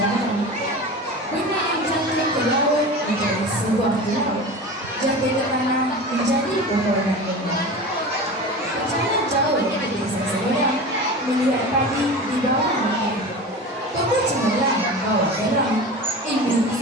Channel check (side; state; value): both; normal; correlation 0.32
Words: benar yang jatuh ke laut menjadi sebuah pulau, jatuh ke tanah menjadi pepohonan bunga. Perjalanan jauh ke desa seberang, melihat padi di bawah angin. Toko cemerlang bawa terang, ilmu